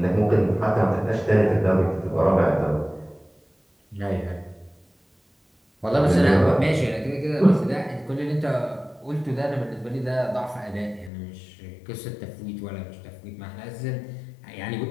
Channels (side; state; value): right; drops out; at 11.1 s